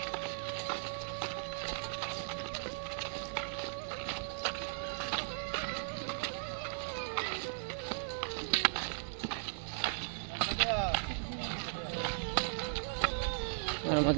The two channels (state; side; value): silent; left; 53 dB below the other